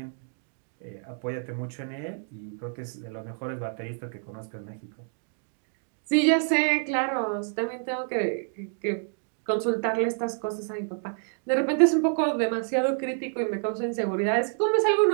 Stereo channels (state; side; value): silent; left; 59 dB below the other